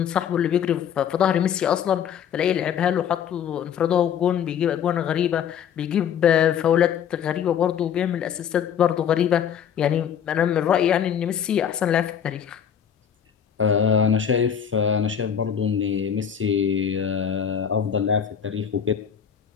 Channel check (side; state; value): right; quieter; 8.5 dB